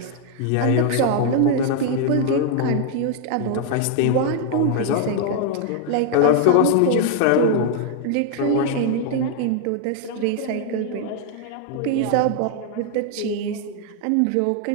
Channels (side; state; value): both; different; correlation 0.00